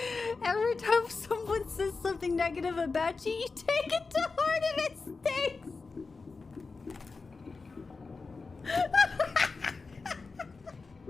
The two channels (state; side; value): quieter; right; 4.2 dB